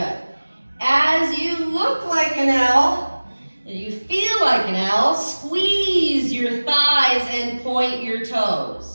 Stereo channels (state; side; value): inverted; both; correlation -1.00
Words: As you look like an L, and you feel like an L, squeeze your thighs and point your